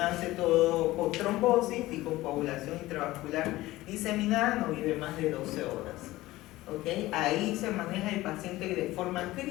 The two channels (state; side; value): quieter; right; 17.6 dB